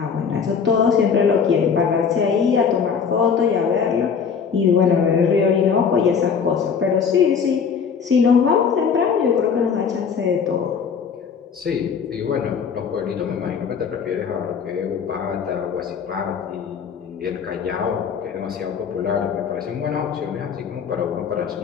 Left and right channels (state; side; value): quieter; right; 6.5 dB